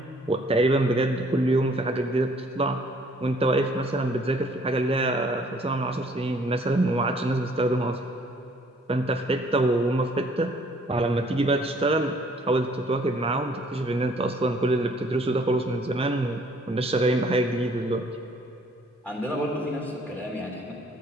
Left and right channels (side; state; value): both; normal; correlation 0.60